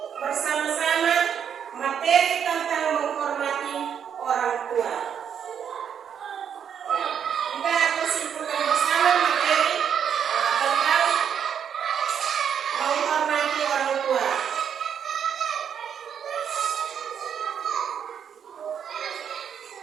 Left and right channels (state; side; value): quieter; left; 8.1 dB